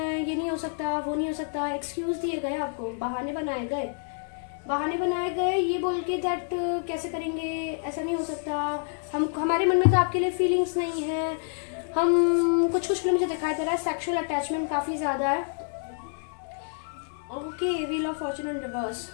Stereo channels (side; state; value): right; silent; 59 dB below the other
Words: ये नहीं हो सकता, वो नहीं हो सकता, एक्सक्यूज दिए गए आपको, बहाने बनाए गए ये बोल के दैट कैसे करेंगे, ऐसा नहीं हो सकता, हमारे मन में तो आपके लिए फीलिंग्स नहीं है, हम कुछ के लिए मुझे दिखाई दे रहा है सेक्सुअल अटैचमेंट काफी ज्यादा है। Okay, wheel of Fortune in reverse,